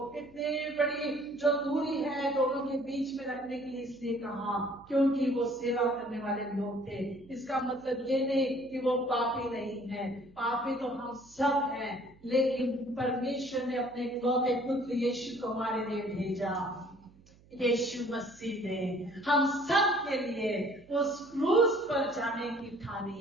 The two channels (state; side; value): noise; right; hum, 27 dB below the sound